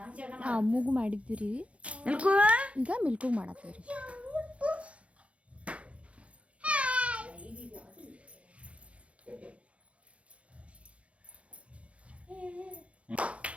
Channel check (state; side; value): late; left; 0.062 ms